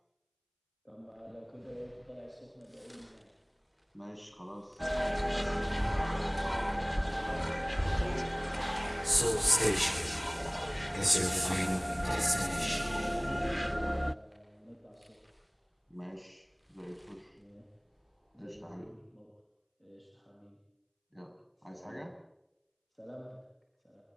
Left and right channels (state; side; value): identical; both; correlation 1.00